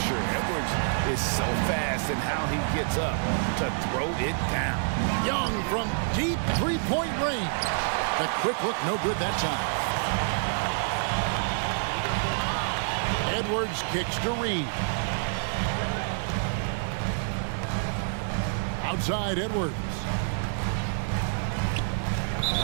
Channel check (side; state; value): left; silent; digital silence